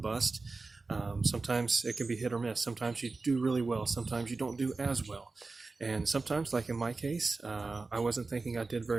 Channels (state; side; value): quieter; left; 3.8 dB